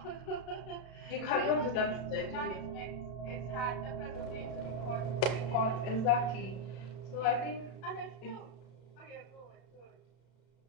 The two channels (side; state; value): right; late; 32 ms